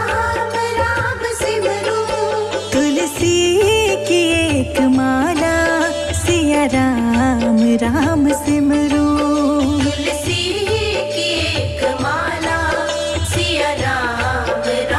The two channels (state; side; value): identical; both; correlation 1.00